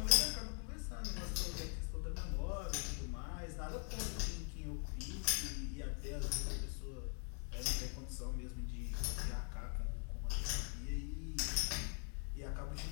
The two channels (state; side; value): quieter; right; 39.3 dB